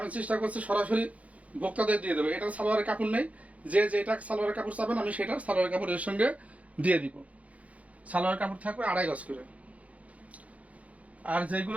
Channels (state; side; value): late; left; 0.067 ms